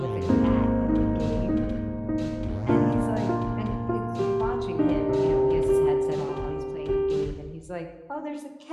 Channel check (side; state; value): both; identical; correlation 1.00